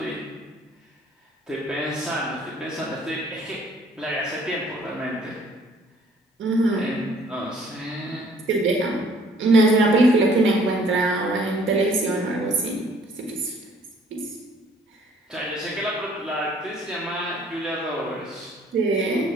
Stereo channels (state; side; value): normal; both; correlation 0.58